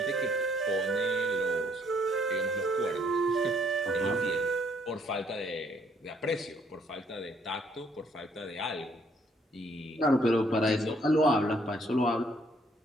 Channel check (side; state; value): both; normal; correlation 0.66